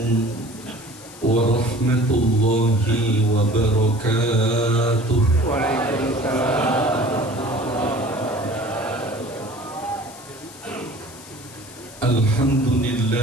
warahmatullahi wabarakatuh. Waalaikumsalam.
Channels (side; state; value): left; noise; hiss, 19 dB below the sound